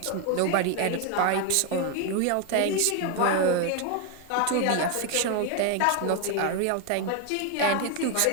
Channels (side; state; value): both; different; correlation 0.01